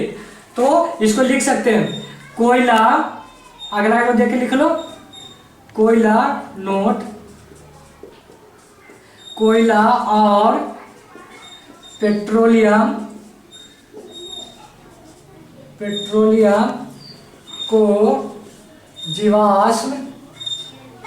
तो इसको लिख सकते हैं कोयला, अगला को देख के लिख लो, कोयला नोट, कोयला और पेट्रोलियम को जीवाश्म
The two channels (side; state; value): both; identical; correlation 1.00